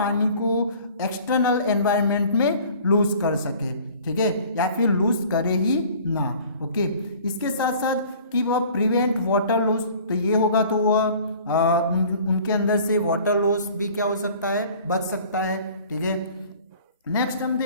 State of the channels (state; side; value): inverted; both; correlation -0.49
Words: को एक्सटर्नल एनवायरनमेंट में लूज कर सके। ठीक है, या फिर लूज करे ही ना। ओके, इसके साथ साथ कि वह प्रिवेंट वाटर लॉस, तो ये होगा तो वह उनके अंदर से वाटर लॉस भी क्या हो सकता है, बच सकता है। ठीक है, नेक्स्ट हम